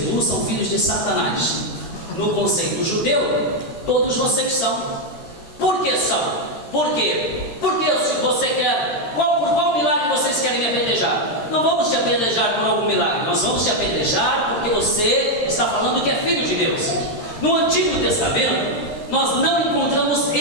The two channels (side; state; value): right; late; 13 ms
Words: são filhos de Satanás. No conceito judeu, todos vocês são. Por que são? Por quê? Porque se você quer, por qual milagre vocês querem me apedrejar? Não vamos te apedrejar por algum milagre, nós vamos te apedrejar porque você está falando que é filho de Deus. No Antigo Testamento, nós não encontramos